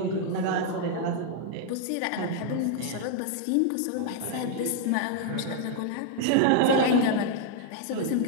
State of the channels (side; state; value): both; different; correlation 0.00